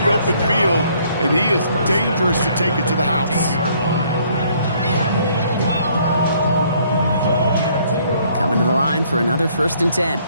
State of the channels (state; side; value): inverted; both; correlation -0.64